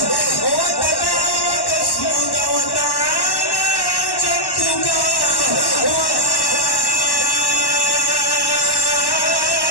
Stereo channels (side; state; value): right; late; 1.1 ms